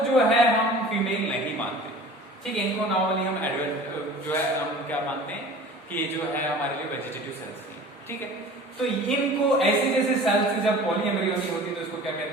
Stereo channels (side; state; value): both; normal; correlation 0.42